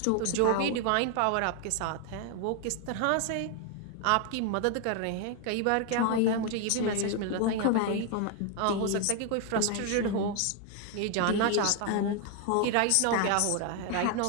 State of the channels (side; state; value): both; different; correlation 0.01